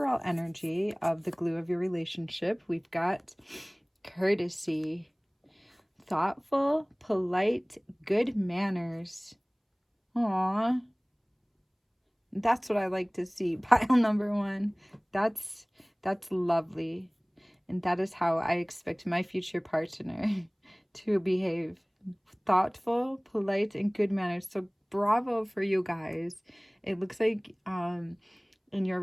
energy of the glue of your relationship, we've got courtesy, thoughtful, polite, good manners. Aw, that's what I like to see. Pile number one. That's lovely. And that is how I expect my future partner to behave. Thoughtful, polite, and good manners. So bravo for you guys. It looks like in your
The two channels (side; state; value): both; identical; correlation 1.00